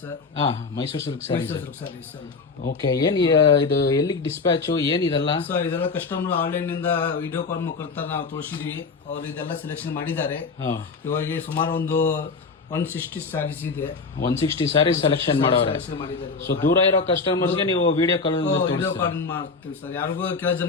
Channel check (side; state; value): right; quieter; 4.5 dB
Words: sir. Mysuru silk Mysuru silk sarees sir. Okay, ಏನ್ ಇದು ಎಲ್ಲಿಗೆ ಡಿಸ್ಪ್ಯಾಚ್ ಏನ್ ಇದೆಲ್ಲ? ಸರ್ ಇದೆಲ್ಲ ಕಸ್ಟಮರ್ ಆನ್ಲೈನ್ ನಿಂದ ವಿಡಿಯೋ ಕಾಲ್ ಮುಖಾಂತರ ನಾವು ತೋರಿಸಿದೀವಿ. ಅವ್ರು ಇದೆಲ್ಲ ಸೆಲೆಕ್ಷನ್ ಮಾಡಿದ್ದಾರೆ. ಇವಾಗ ಸುಮಾರು ಒಂದು 160 ಸ್ಯಾರೀಸ್ ಇದೆ. 160 ಸ್ಯಾರೀಸ್ ಸೆಲೆಕ್ಷನ್ ಮಾಡವ್ರೆ. ಸೊ ದೂರ ಇರೋ ಕಸ್ಟಮರ್ಸ್ಗೆ ನೀವು ವಿಡಿಯೋ ಕಾಲ್ ಮಾಡ್ತೀವಿ ಸರ್. ಯಾರಿಗೂ ಕೆಲ